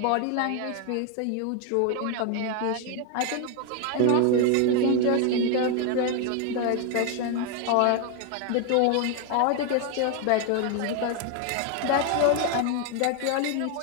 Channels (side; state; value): both; different; correlation 0.00